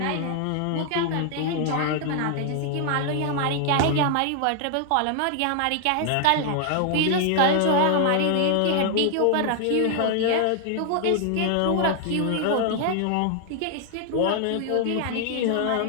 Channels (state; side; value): different; both; correlation 0.00